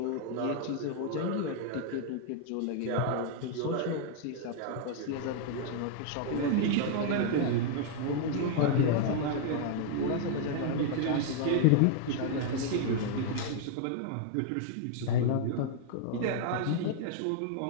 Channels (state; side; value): different; both; correlation 0.00